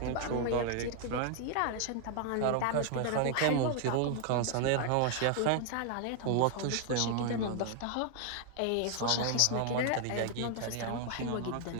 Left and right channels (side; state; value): both; different; correlation 0.00